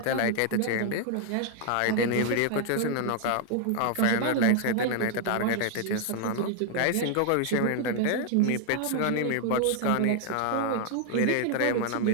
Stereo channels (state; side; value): different; both; correlation 0.00